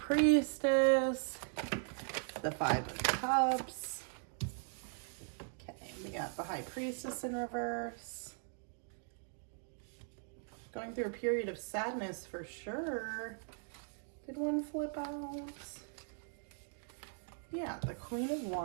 the 5 of Cups. Okay, we got the High Priestess in reverse. Going through a period of sadness for sure. Did one flip out? Yeah, the Queen of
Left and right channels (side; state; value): left; silent; 52 dB below the other